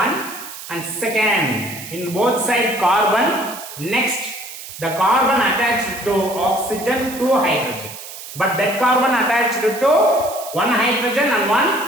and second, in both sides carbon, next the carbon attached to oxygen, 2 hydrogen. But that carbon attached to 1 hydrogen and 1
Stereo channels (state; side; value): noise; right; hiss, 12 dB below the sound